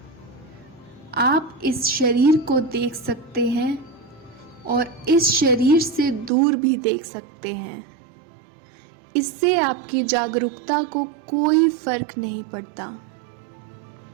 आप इस शरीर को देख सकते हैं और इस शरीर से दूर भी देख सकते हैं। इससे आपकी जागरूकता को कोई फर्क नहीं पड़ता।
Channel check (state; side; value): drops out; left; at 6.3 s